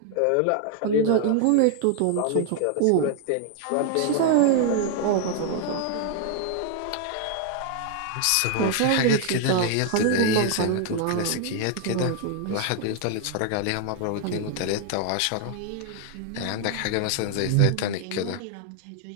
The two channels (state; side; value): different; both; correlation 0.00